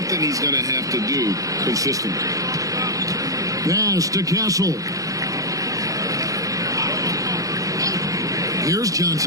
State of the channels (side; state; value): left; late; 0.17 ms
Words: he's going to have to do consistently. Pass to Castle. Here's